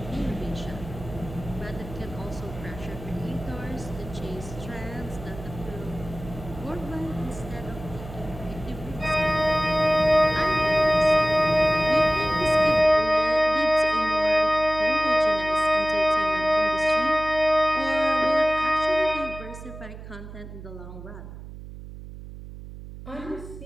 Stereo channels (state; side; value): noise; right; hum, 13 dB below the sound